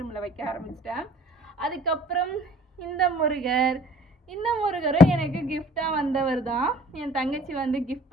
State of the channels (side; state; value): both; normal; correlation 0.51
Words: ரூமில் வைக்க ஆரம்பிச்சிட்டேன். அதுக்கப்புறம் இந்த முருகரும் எனக்கு கிஃப்டாக வந்தவர் தான். என் தங்கச்சி வந்து கிஃப்ட்